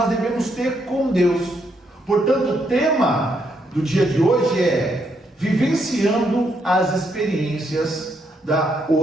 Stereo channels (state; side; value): normal; both; correlation 0.76